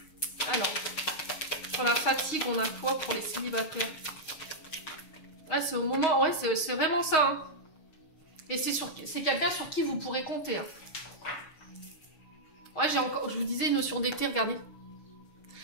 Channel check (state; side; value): late; right; 6.4 ms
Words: Alors, sur la fatigue, on a quoi pour les célibataires ? Ouais, c'est au moment, ouais, c'est vraiment ça. Hein. Et c'est quelqu'un sur qui vous pourrez compter. Hein. Ouais, je vous disais, notion d'été, regardez.